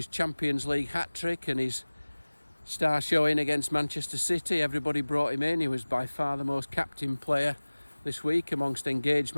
Champions League hat-trick and his star showing against Manchester City. Everybody brought him in. He was by far the most captain player this week amongst engaged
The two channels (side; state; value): both; inverted; correlation -1.00